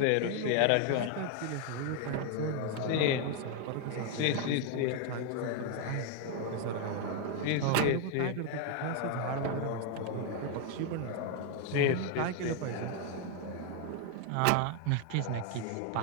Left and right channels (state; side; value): different; both; correlation 0.01